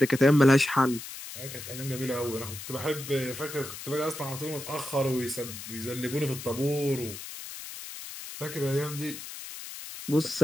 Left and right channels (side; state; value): left; noise; hiss, 11 dB below the sound